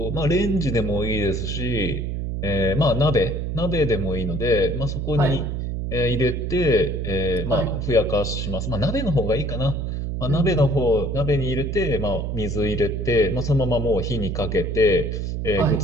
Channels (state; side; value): noise; right; hum, 3 dB below the sound